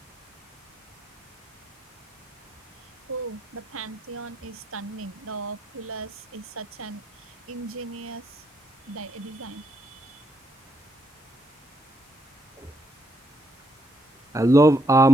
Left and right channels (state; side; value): normal; both; correlation 0.75